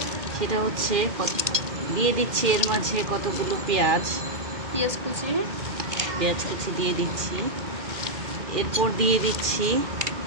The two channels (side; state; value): left; late; 2.2 ms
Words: সেটা হচ্ছে দিয়ে দিচ্ছি এর মাঝে কতগুলো পেঁয়াজ কুচি দিয়ে দিচ্ছি। এরপর দিয়ে দিচ্ছি